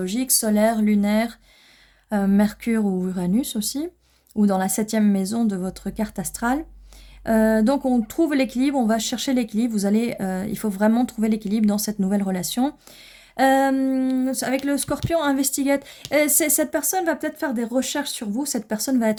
solaire, lunaire, Mercure ou Uranus aussi, ou dans la 7e maison de votre carte astrale. Donc on trouve l'équilibre, on va chercher l'équilibre, il faut vraiment trouver l'équilibre dans cette nouvelle relation. Avec le Scorpion, investigate. Cette personne va peut-être faire des recherches sur vous, cette personne va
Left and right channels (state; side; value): identical; both; correlation 1.00